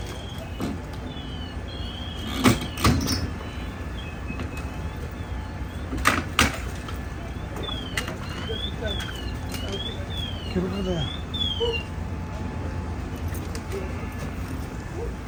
Get over there.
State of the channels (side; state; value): both; identical; correlation 1.00